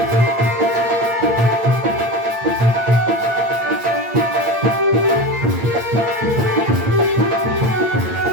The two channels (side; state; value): left; late; 8.7 ms